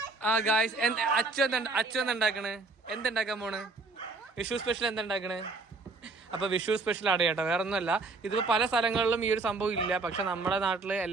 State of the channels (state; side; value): quieter; left; 3.7 dB